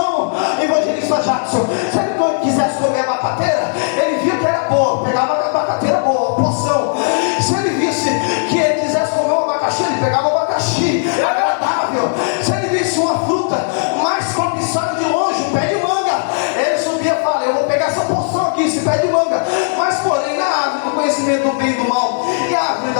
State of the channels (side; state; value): right; silent; digital silence